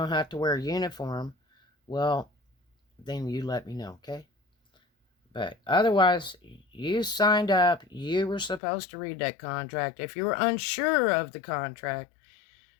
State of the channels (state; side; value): drops out; right; at 8.6 s